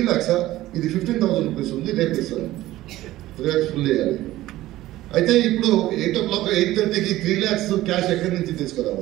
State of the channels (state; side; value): quieter; left; 15.9 dB